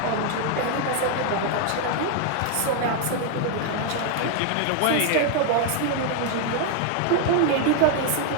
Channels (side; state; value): both; different; correlation 0.00